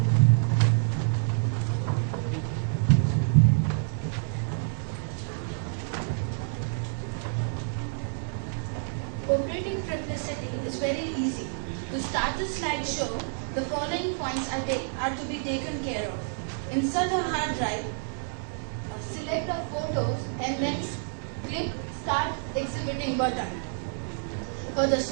Operating Triplicity is very easy. To start the slideshow, the following points are to be taken care of. Insert a hard drive, select the photos, and then click Start Exhibiting button. For the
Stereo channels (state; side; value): silent; left; 59 dB below the other